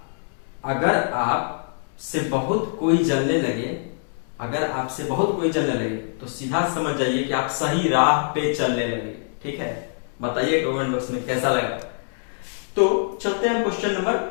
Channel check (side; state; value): right; silent; digital silence